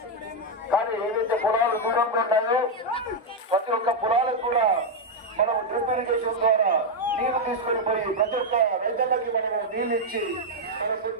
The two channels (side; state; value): both; normal; correlation 0.00